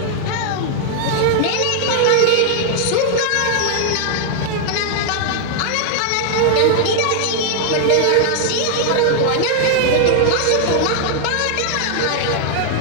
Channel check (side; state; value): both; different; correlation 0.00